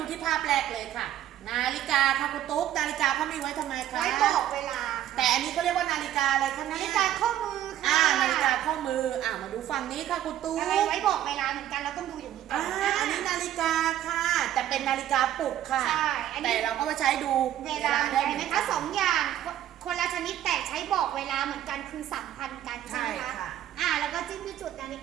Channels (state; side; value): quieter; left; 12.0 dB